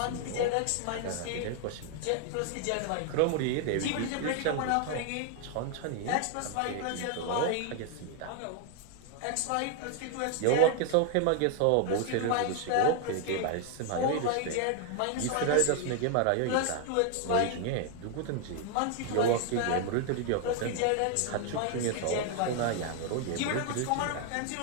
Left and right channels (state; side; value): different; both; correlation 0.00